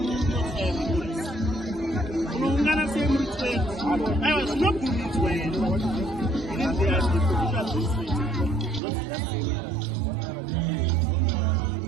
unoungana sei muri 12 aiwa zvinobvumidzwa here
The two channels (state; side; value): drops out; left; at 8.8 s